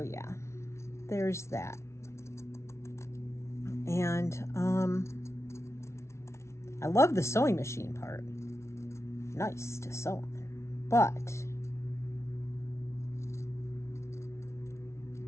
yeah, there's that. And I love the sewing machine part. Nice to sew on. But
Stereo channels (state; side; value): late; right; 0.13 ms